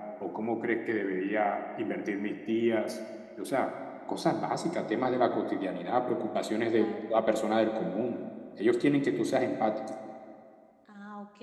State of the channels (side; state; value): both; identical; correlation 1.00